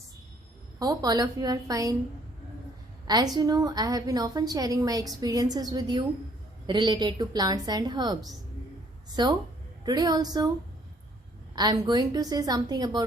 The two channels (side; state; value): both; normal; correlation 0.62